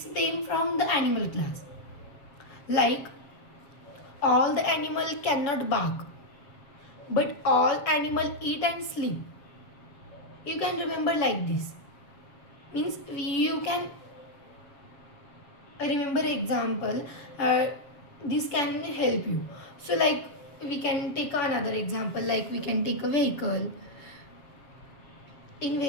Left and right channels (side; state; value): right; late; 7.4 ms